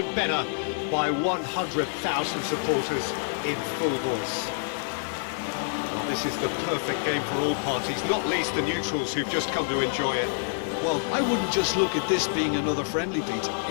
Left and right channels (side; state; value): right; silent; 60 dB below the other